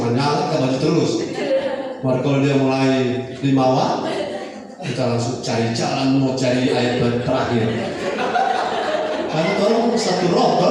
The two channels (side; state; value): both; identical; correlation 1.00